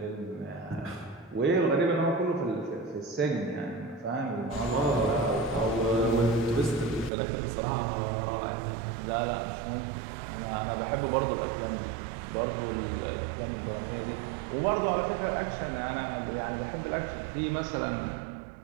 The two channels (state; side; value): drops out; left; at 7.1 s